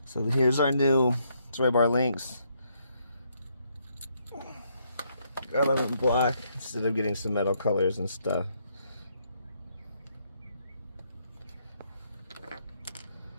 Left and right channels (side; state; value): both; inverted; correlation -0.74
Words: So here's our new sway bar links. Got them in black instead of getting some metal colors and stuff.